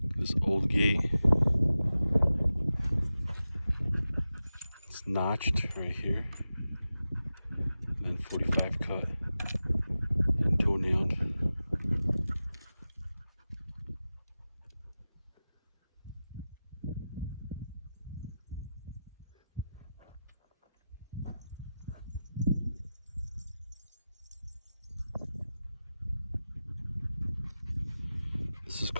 This old gate, it's notched right here, and then 45 cut and toe-nailed. This is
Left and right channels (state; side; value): inverted; both; correlation -0.93